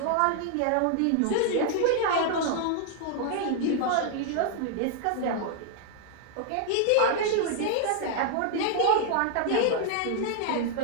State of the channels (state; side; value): different; both; correlation -0.01